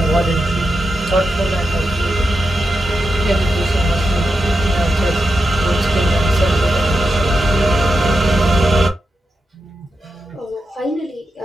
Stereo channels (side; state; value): both; normal; correlation 0.88